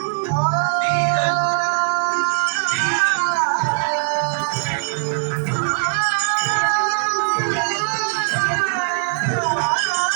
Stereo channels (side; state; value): left; silent; digital silence